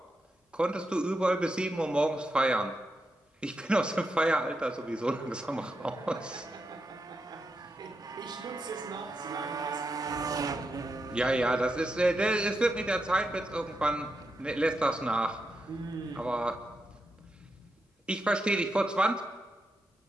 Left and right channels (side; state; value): both; normal; correlation 0.85